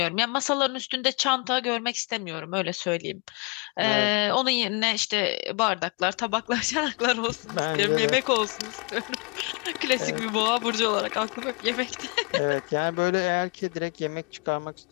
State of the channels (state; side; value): quieter; right; 33.3 dB